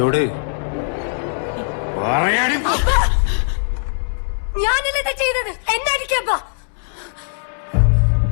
ഞാനല്ലേ ചെയ്തത്, എന്നടിക്കപ്പാ.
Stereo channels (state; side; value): silent; right; 66 dB below the other